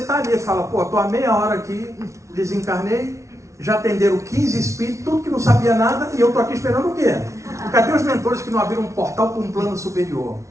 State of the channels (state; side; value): late; left; 0.14 ms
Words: tá ali e fala, pô, tô há meia hora aqui, desencarnei, já atenderam 15 espíritos, tudo que não sabia nada, e eu tô aqui esperando o quê? Cadê os mentores que não abriram um portal para um plano superior?